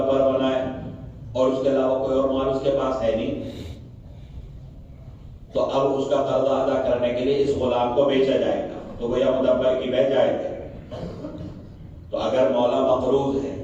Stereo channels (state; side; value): identical; both; correlation 1.00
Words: بنائے اور اس کے علاوہ کوئی اور مال اس کے پاس ہے نہیں، تو اب اس کا قرضہ ادا کرنے کے لیے اس غلام کو بیچا جائے گا، تو گویا مدبر کی بیع جائز ہے۔ تو اگر مولا مقروض ہے